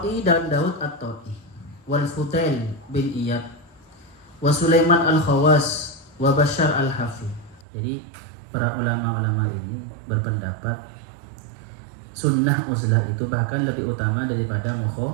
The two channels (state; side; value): drops out; left; at 7.6 s